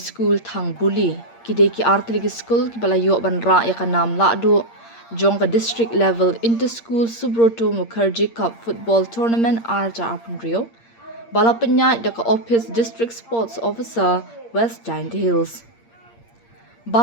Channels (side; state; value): right; late; 8.7 ms